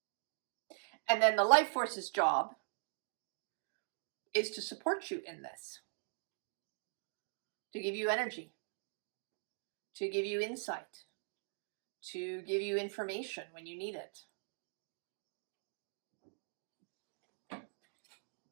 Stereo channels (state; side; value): silent; left; digital silence